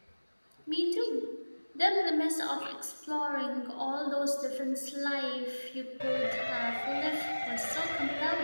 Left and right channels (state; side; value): inverted; both; correlation -1.00